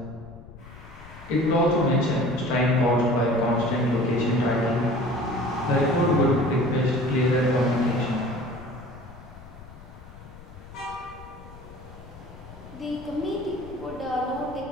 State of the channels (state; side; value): noise; left; rumble, 18 dB below the sound